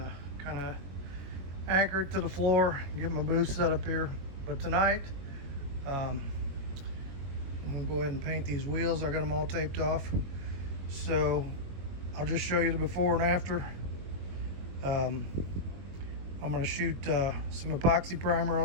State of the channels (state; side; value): late; left; 22 ms